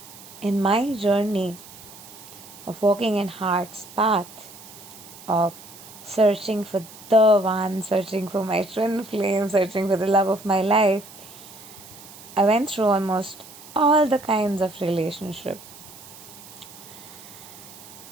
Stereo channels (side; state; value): right; noise; hiss, 18 dB below the sound